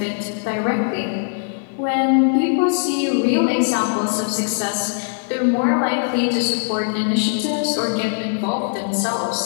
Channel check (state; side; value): silent; right; 65 dB below the other